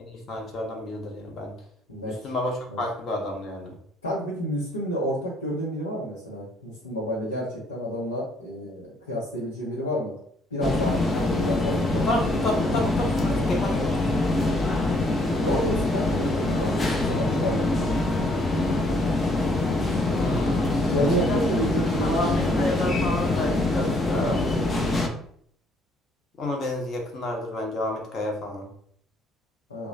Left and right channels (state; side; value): normal; both; correlation 0.66